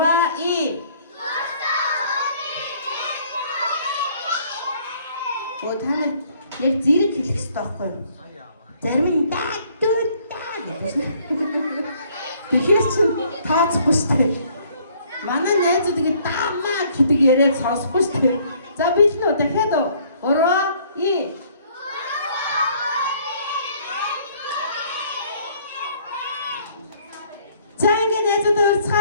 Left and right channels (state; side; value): inverted; both; correlation -0.61